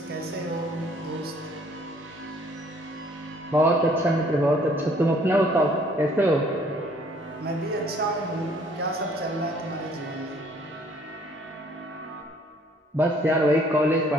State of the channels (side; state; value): both; normal; correlation 0.60